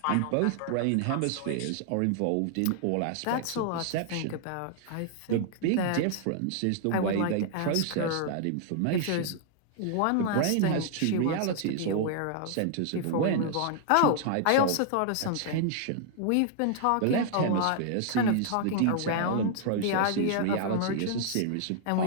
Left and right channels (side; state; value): both; different; correlation 0.00